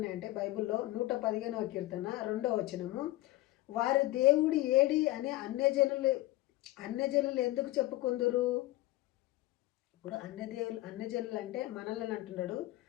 బైబిల్లో 115వ కీర్తన 2వ వచనము, వారి దేవుడు ఏడి అని అన్యజనులు ఎందుకు చెప్పుకుందురు? ఇప్పుడు అన్యజనులు అంటే మనల్ని అంటున్నాడు,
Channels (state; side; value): quieter; right; 17.7 dB